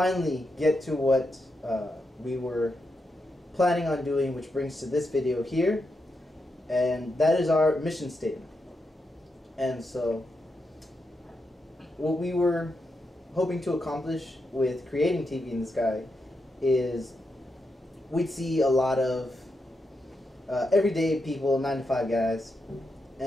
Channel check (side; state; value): both; normal; correlation 0.85